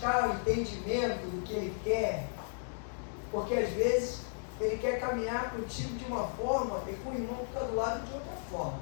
o entendimento do que Ele quer? Porque às vezes Ele quer caminhar contigo de uma forma e com o irmão fica do lado de outra forma.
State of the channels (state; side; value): silent; right; digital silence